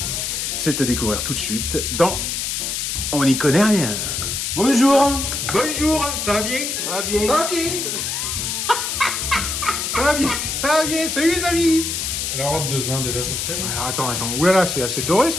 C'est à découvrir tout de suite dans On n'y connaît rien. Bonjour. Bonjour, ça va bien? Ça va bien. Ça va bien. Ça va bien. Ça va bien. Salut les amis. La robe de ce vin déjà, ça te plaît? Alors attends. Oulala, c'est assez doré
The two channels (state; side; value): noise; left; hiss, 2 dB below the sound